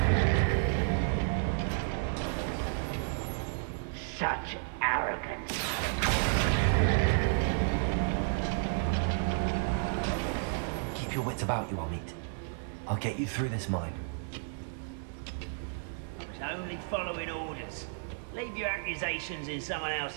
Such arrogance. Keep your wits about you, Amit. I'll get you through this mine. I was only following orders. Leave your accusations in someone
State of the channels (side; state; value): left; silent; digital silence